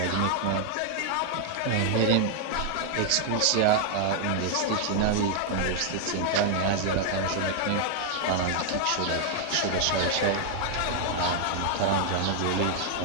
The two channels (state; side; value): different; both; correlation 0.00